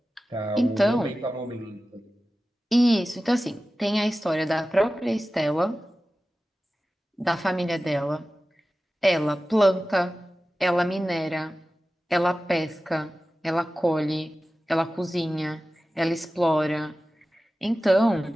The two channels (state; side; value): normal; both; correlation 0.95